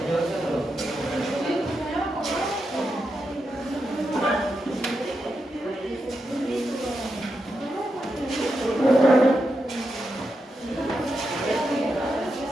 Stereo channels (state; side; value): normal; both; correlation 0.86